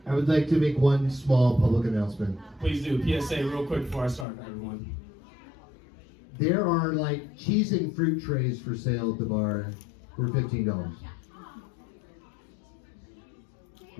would like to make one small public announcement. Please do. PSA real quick before I start, everyone. There are like cheese and fruit trays for sale at the bar for $15.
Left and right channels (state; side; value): drops out; right; at 4.2 s